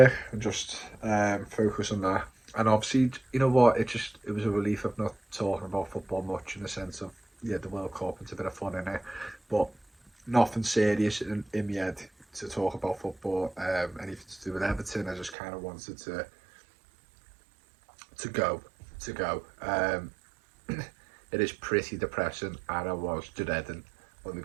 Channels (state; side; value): drops out; left; at 15.4 s